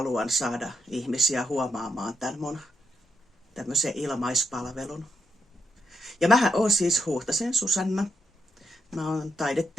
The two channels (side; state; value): both; normal; correlation 0.80